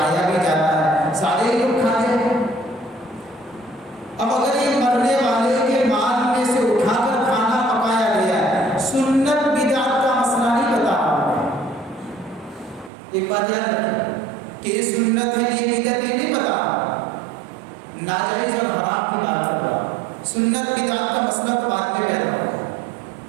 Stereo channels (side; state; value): left; drops out; at 12.9 s